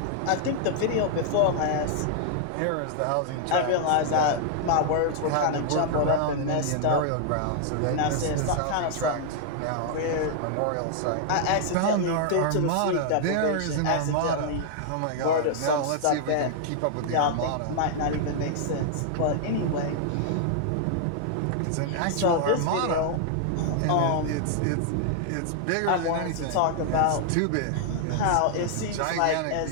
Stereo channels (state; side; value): different; both; correlation -0.01